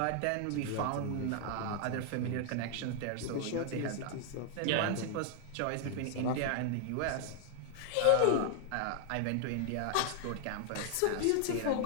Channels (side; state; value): both; different; correlation 0.00